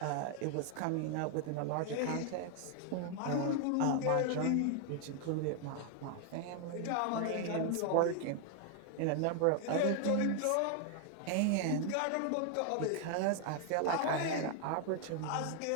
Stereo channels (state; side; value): different; both; correlation 0.00